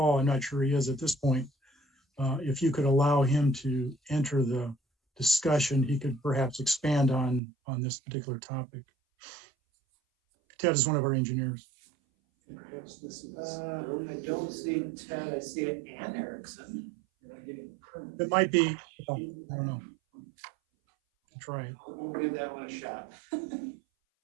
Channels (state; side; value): drops out; left; at 7.4 s